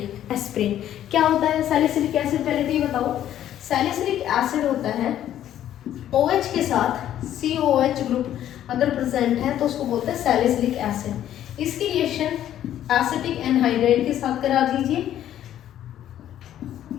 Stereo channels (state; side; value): quieter; right; 11.5 dB